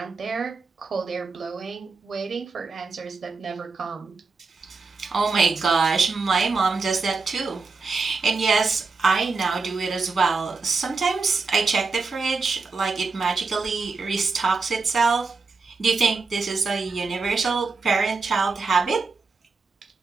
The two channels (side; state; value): left; quieter; 4.3 dB